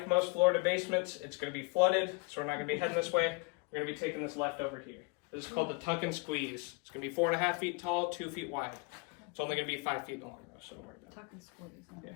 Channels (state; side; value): quieter; right; 29.1 dB